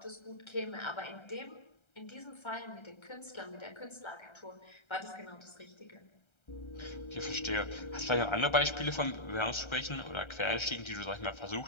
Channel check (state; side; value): late; right; 1.3 ms